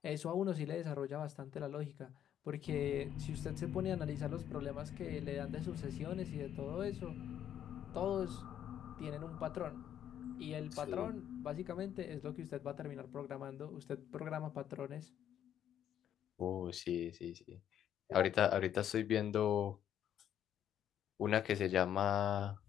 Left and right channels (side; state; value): right; quieter; 10.2 dB